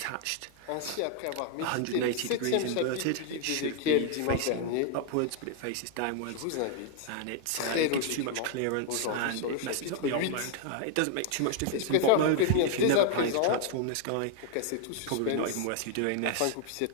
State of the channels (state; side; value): different; both; correlation 0.00